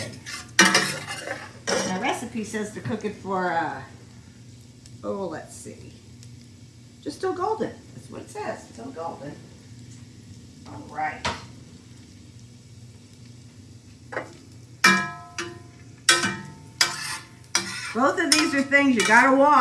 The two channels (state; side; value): identical; both; correlation 1.00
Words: He says to cook it for, let's see, just till golden. That's what it says, till golden. All right. Both of these are things you gotta